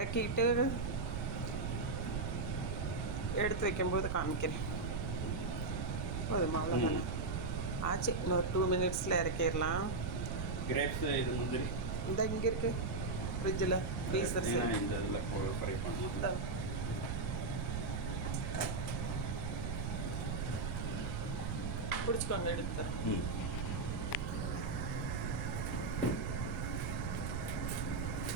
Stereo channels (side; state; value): right; noise; rumble, 2 dB below the sound